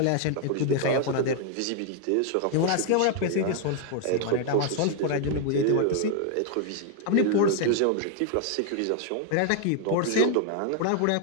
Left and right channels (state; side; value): different; both; correlation 0.00